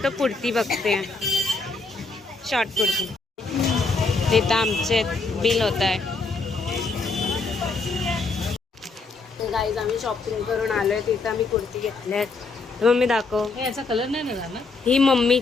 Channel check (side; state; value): right; quieter; 3.9 dB